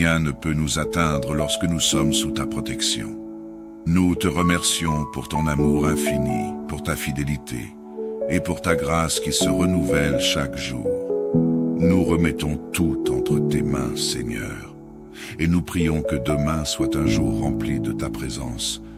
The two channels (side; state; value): both; identical; correlation 1.00